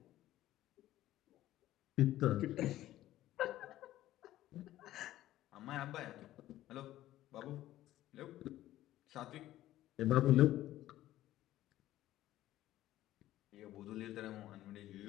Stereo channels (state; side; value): quieter; right; 14.4 dB